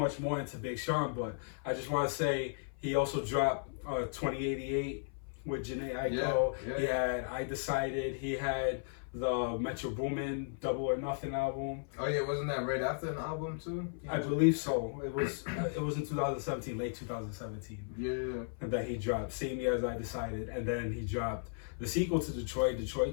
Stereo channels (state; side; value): silent; right; 54 dB below the other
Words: more into Big Sean, but I just want to say he also dropped 2088 with Jhené Aiko. He had I Decided. He had the Metro Boomin Double or Nothing album. Oh yeah, wasn't that right after an album too? I believe so. It was in 2017, late 2017. Yeah. And that he dropped same year as I Decided, and then he dropped the sequel to Detroit